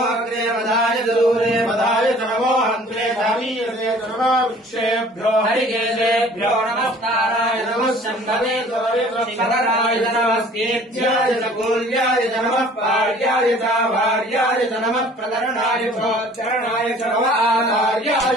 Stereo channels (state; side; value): normal; both; correlation 0.51